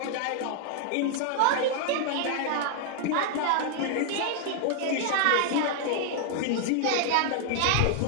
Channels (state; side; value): different; both; correlation 0.00